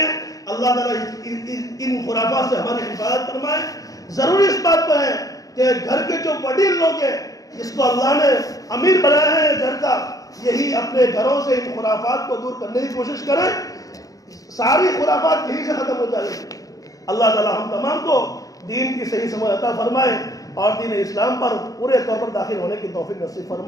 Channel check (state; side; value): late; right; 0.17 ms